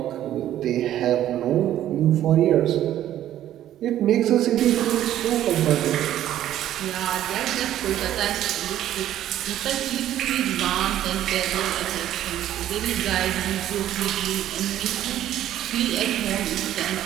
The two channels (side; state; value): left; quieter; 12.2 dB